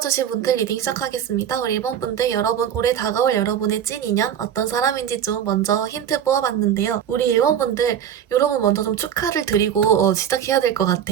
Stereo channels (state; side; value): quieter; left; 9.3 dB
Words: 분들 리딩 시작하겠습니다. 우리 1번 분들, 여러분 올해 다가올 여러분의 찐 인연 어떤 사람인지 좀 먼저 힌트 뽑아봤는데요. 우리 1번 분들, 여러분 먼저 좀 축하를 드리고 시작해야 될 것